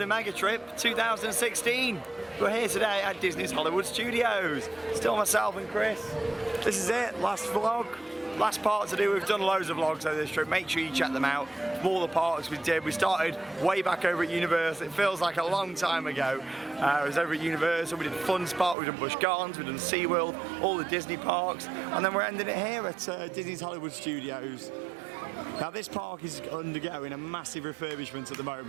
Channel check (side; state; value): left; drops out; at 18.8 s